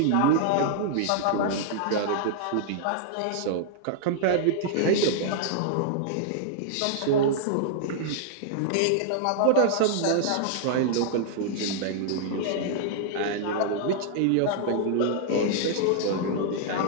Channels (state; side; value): different; both; correlation -0.01